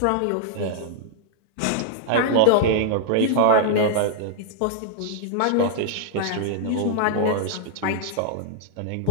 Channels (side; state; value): both; different; correlation -0.01